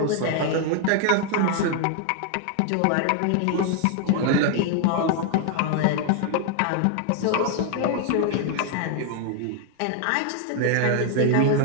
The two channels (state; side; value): different; both; correlation 0.00